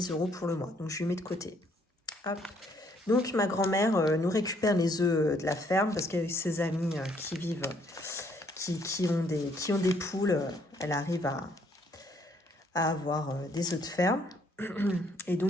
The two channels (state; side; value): normal; both; correlation 0.67